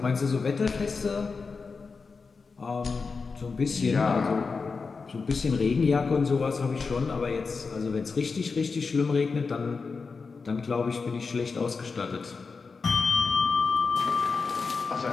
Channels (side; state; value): right; quieter; 4.7 dB